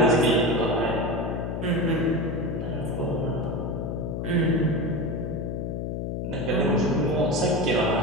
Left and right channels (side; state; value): left; noise; hum, 3 dB below the sound